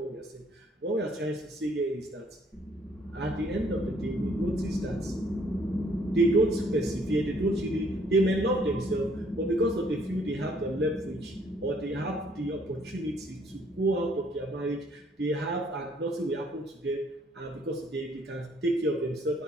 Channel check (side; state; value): both; normal; correlation 0.64